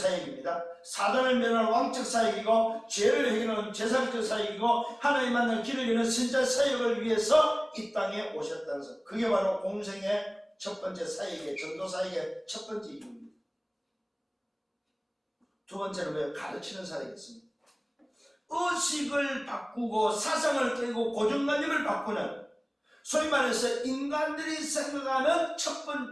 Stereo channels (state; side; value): identical; both; correlation 1.00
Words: 사단을 멸하는 왕적 사역이고 죄를 해결하는 제사장 사역이고 하나님 만나는 길을 여는 선자 사역을 위해서 이 땅에 오셨다는 사역. 그게 바로 공생의 첫 번째 사역의 전도 사역의 첫 번째 이유입니다. 두 번째는 가르치는 사역이었습니다. 의식을 바꾸고 사상을 깨고 고정관념을 바꾸는, 소위 말해서 인간들이 생각하는 첫